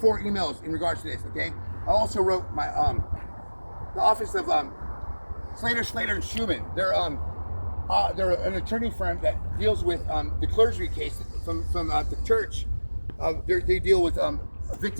emails in regards to this, okay? I also wrote my the office of Slater and Schumann. They're an attorney firm that deals with the clergy case from the church. They deal with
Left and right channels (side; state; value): both; inverted; correlation -1.00